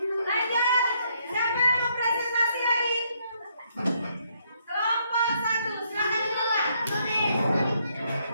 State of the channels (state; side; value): inverted; both; correlation -0.72